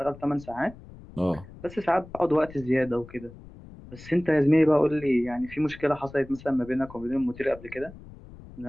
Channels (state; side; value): noise; left; rumble, 18 dB below the sound